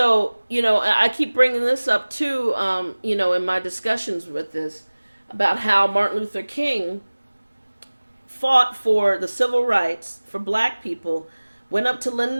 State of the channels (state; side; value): inverted; both; correlation -1.00